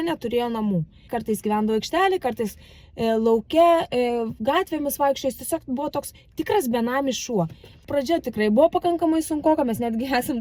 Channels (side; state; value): both; identical; correlation 1.00